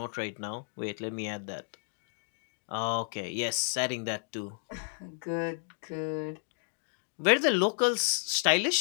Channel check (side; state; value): right; silent; digital silence